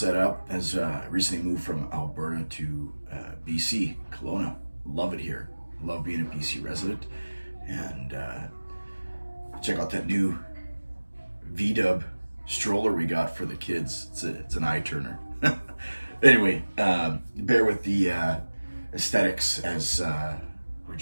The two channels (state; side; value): inverted; both; correlation -1.00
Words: up as I recently moved from Alberta to BC, Kelowna. Love it here. Love being a BC resident. And check out that new V-dub stroller we got for the kids. It's an eye turner. Anyway, bear with the aesthetics as we're